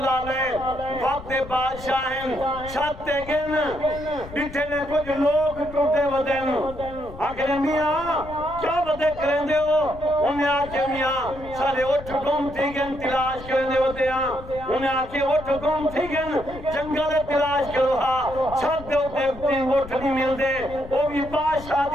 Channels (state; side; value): noise; left; rumble, 15 dB below the sound